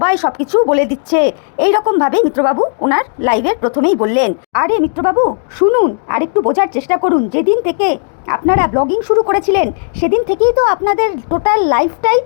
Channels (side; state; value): right; silent; 62 dB below the other